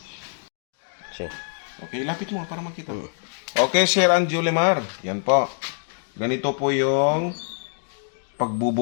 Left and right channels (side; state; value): right; silent; digital silence